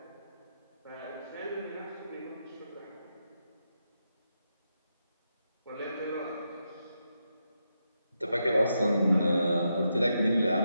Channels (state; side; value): inverted; both; correlation -0.84